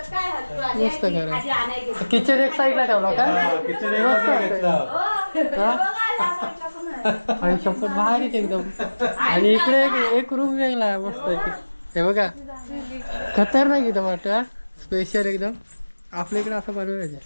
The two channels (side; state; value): both; inverted; correlation -1.00